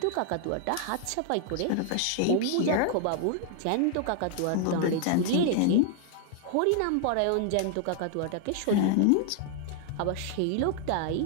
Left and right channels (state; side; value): different; both; correlation 0.00